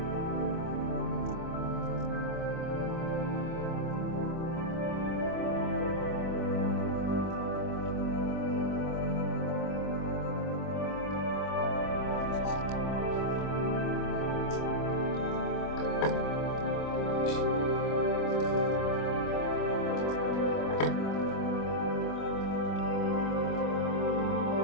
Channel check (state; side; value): late; right; 25 ms